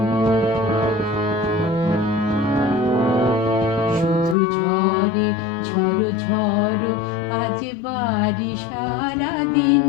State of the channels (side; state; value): right; drops out; at 4.4 s